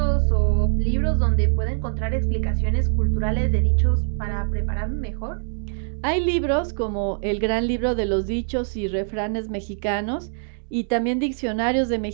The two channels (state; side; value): silent; left; 63 dB below the other